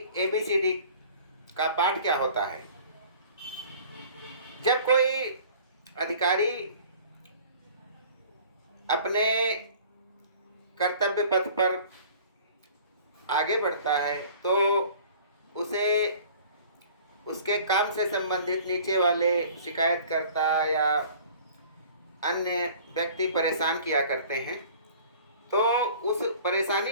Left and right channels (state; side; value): inverted; both; correlation -0.47